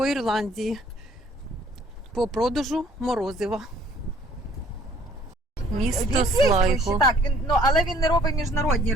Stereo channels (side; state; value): both; normal; correlation 0.59